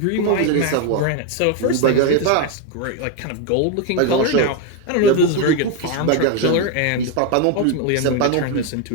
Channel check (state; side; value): different; both; correlation 0.02